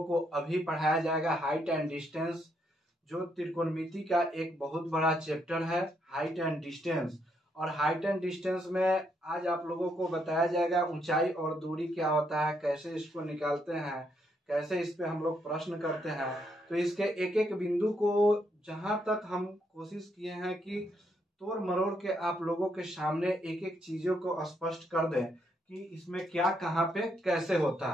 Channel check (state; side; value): normal; both; correlation 0.76